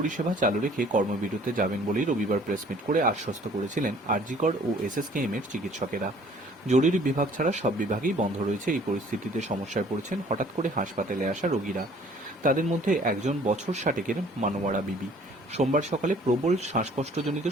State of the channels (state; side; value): normal; both; correlation 0.55